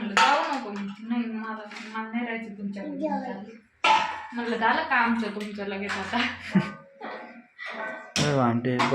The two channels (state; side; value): identical; both; correlation 1.00